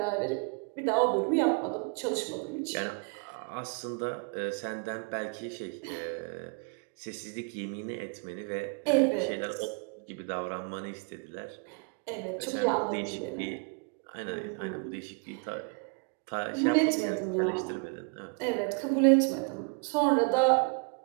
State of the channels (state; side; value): quieter; left; 36.2 dB